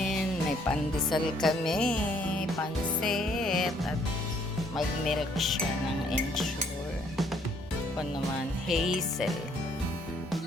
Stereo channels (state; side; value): normal; both; correlation 0.65